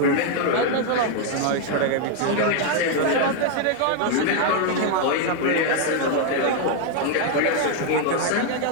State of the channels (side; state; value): both; different; correlation 0.00